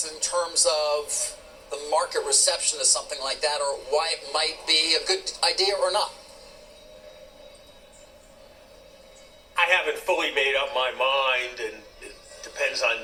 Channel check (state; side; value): identical; both; correlation 1.00